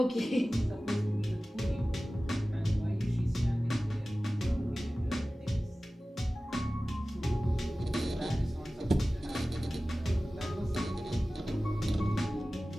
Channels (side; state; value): both; normal; correlation 0.96